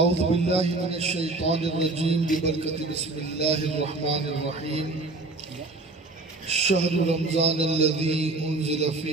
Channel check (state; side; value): quieter; left; 3.0 dB